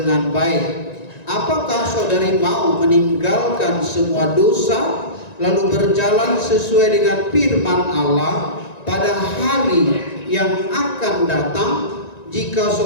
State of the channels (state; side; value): late; right; 1.9 ms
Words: baik. Apakah saudari mau meninggalkan semua dosa lalu berjalan sesuai dengan firman Allah pada hari yang akan datang? Jika